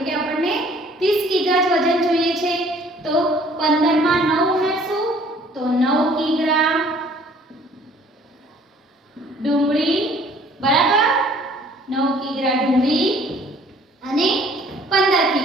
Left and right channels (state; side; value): normal; both; correlation 0.56